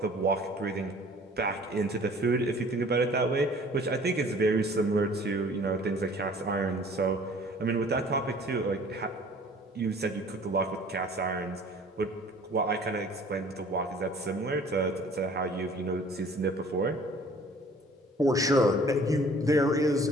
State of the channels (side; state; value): both; normal; correlation 0.51